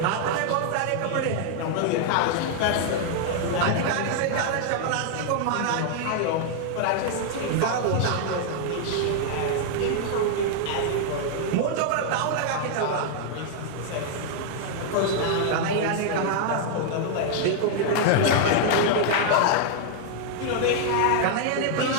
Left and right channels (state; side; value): different; both; correlation -0.01